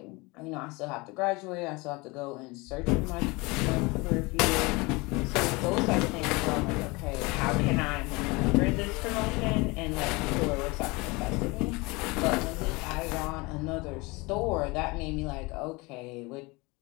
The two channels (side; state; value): right; quieter; 25.2 dB